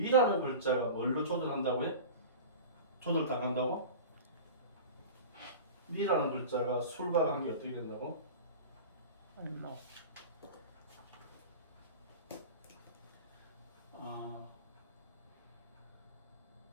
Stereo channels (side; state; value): both; inverted; correlation -0.34